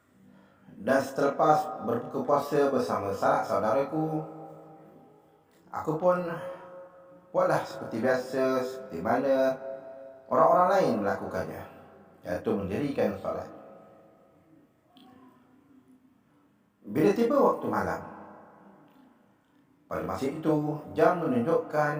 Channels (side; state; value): both; identical; correlation 1.00